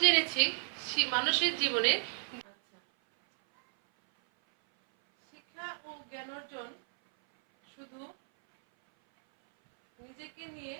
জেনেছি মানুষের জীবনে শিক্ষা ও জ্ঞান অর্জন শুধু নিজেকে নিয়ে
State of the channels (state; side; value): silent; left; 56 dB below the other